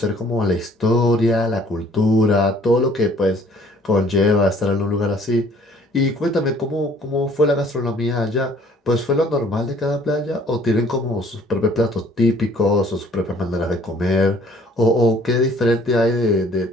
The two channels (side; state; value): both; normal; correlation 0.57